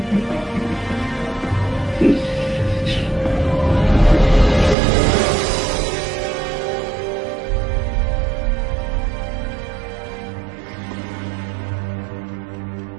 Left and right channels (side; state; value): left; drops out; at 4.8 s